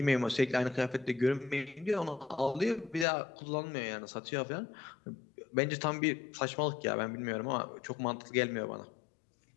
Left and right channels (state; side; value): drops out; right; at 3.1 s